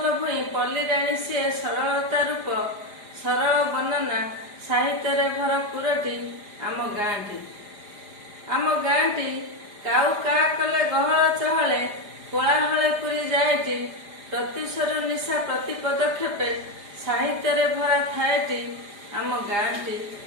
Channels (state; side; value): late; left; 4.9 ms